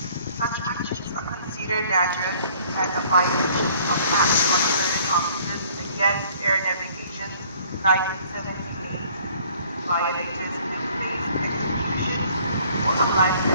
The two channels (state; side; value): inverted; both; correlation -0.57